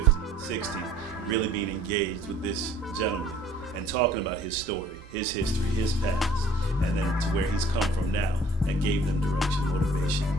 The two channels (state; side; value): normal; both; correlation 0.54